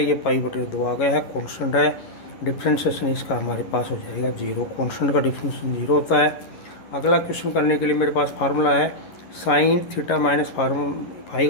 ये π/2 आ गया है, कॉन्स्टेंट है। डिफ्रेंशिएशन इसका हमारे पास हो जाएगा 0। कॉन्स्टेंट का डिफ्रेंशिएशन 0 होता है। अगला क्वेश्चन करने के लिए मेरे पास फार्मूला है साइन थीटा माइनस फाई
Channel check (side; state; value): right; late; 11 ms